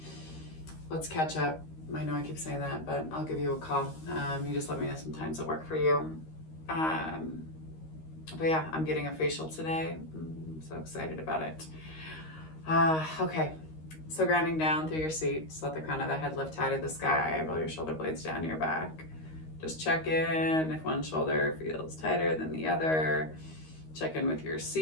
Let's catch up. I know I keep saying that, but I'll give you a call. You just let me know some times that work for you. But yeah, I'm getting a facial today. I'm so excited about it. Okay, so grounding down through your seat. Just let the crown of the head lift high to the sky. Roll your shoulder blades down your back. Just check in if one shoulder feels tighter than the other. Check in with your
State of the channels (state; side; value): late; right; 13 ms